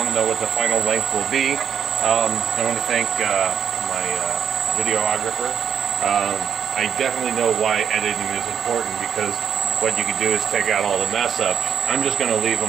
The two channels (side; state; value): left; quieter; 7.9 dB